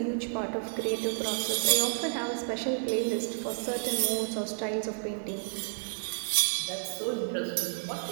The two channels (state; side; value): silent; left; digital silence